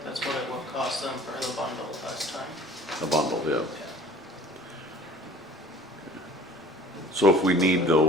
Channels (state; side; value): normal; both; correlation 0.48